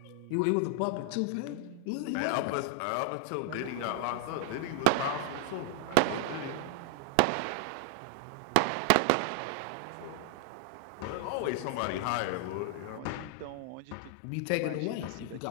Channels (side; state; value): both; different; correlation 0.00